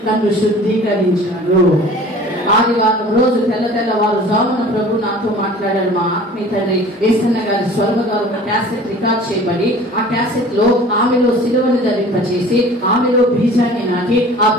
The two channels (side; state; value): both; normal; correlation 0.45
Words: నన్ను శుద్ధీకరించాడు. ఆదివారం రోజు తెల్లవారు జామున ప్రభు నాతో మాట్లాడాడు. మా ఆత్మీయ తండ్రి ఏసన్న గారి స్వర్గ గారు ఒక క్యాసెట్ రికార్డ్ చేయబడి, ఆ క్యాసెట్ లో ఆమెలో సిలువను ధరింపచేసి ఆమెలో బీజాన్ని నాటి ఆ